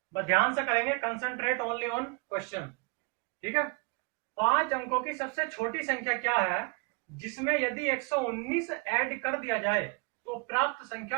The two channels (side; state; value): left; quieter; 30.7 dB